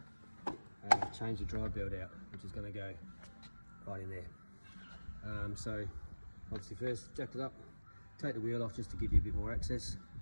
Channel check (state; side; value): inverted; both; correlation -1.00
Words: to change the drive belt out, which is going to go right in there. So obviously first jack it up, take the wheel off just to give you a bit more access,